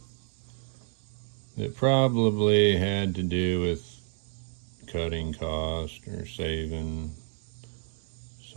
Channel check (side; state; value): left; silent; 58 dB below the other